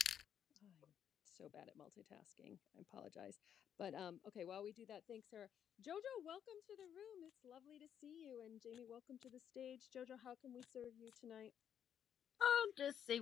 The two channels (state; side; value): quieter; right; 9.1 dB